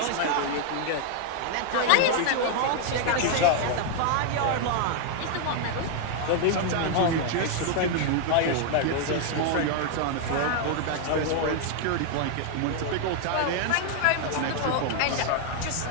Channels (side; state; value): both; different; correlation 0.00